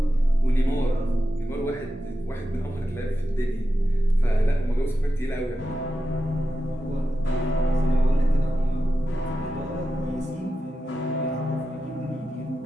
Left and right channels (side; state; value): both; normal; correlation 0.90